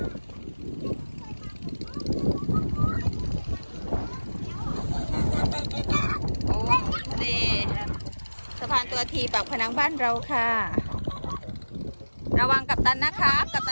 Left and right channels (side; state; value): both; inverted; correlation -1.00